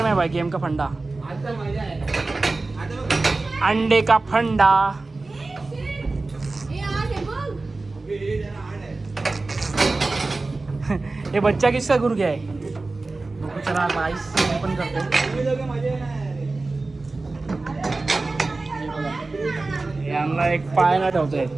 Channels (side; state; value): left; quieter; 3.4 dB